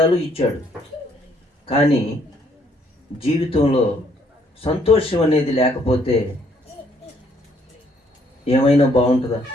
ఇచ్చాడు. కానీ జీవితంలో సంతోషం అనేది లేకపోతే ఏమైనా బాగుంటుందా?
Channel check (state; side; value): normal; both; correlation 0.67